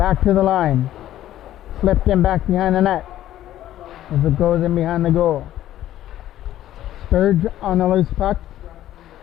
to the line. Flipped in back behind the net as it goes in behind the goal. Sturge on the loose puck.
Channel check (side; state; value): right; quieter; 12.9 dB